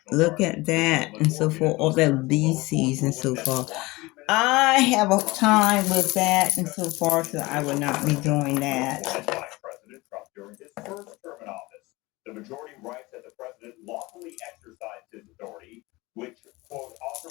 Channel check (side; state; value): right; quieter; 22.0 dB